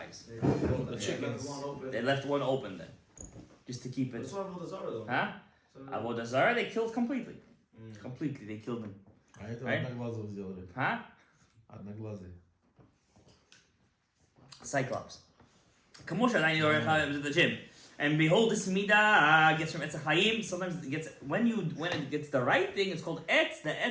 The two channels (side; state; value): both; identical; correlation 1.00